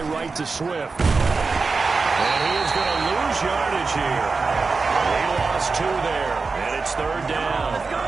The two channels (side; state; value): left; quieter; 4.3 dB